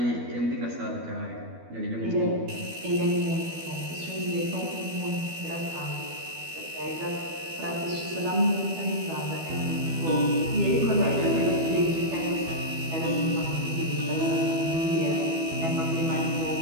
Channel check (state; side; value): late; left; 12 ms